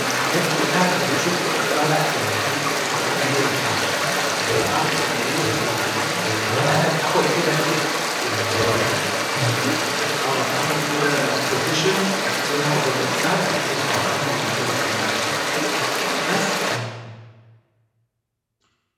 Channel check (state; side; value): identical; both; correlation 1.00